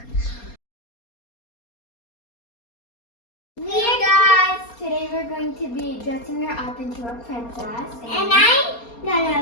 Hey guys! Today we're going to be dressing her up into a princess. And I'm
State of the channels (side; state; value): right; late; 4.3 ms